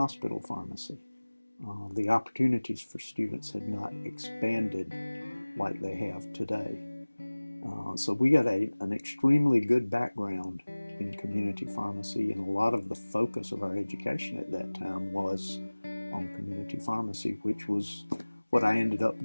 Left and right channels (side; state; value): both; inverted; correlation -1.00